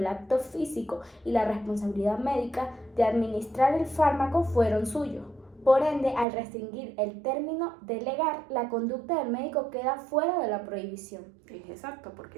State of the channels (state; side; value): drops out; left; at 6.2 s